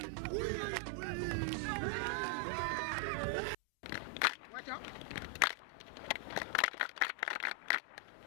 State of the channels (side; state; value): right; drops out; at 3.6 s